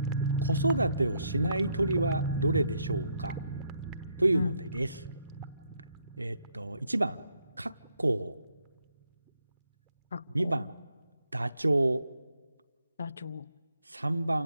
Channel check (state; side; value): inverted; both; correlation -0.74